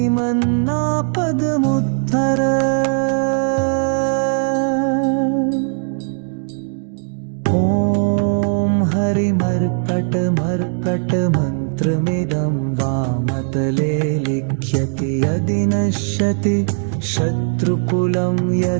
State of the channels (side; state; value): left; silent; 59 dB below the other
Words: ॐ हरिमर्कटमर्कटमन्त्रमिदं वामतले लिख्यति यदि नश्यति शत्रुकुलं